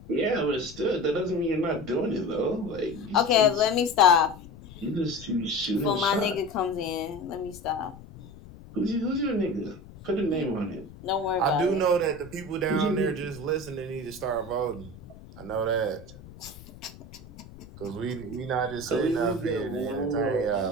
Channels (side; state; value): left; noise; rumble, 18 dB below the sound